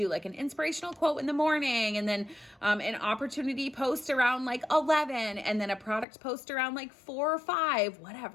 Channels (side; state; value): right; drops out; at 6.1 s